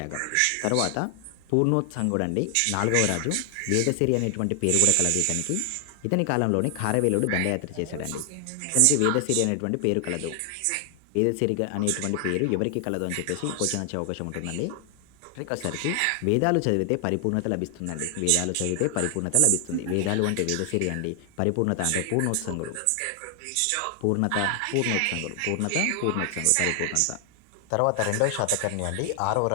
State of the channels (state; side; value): different; both; correlation 0.00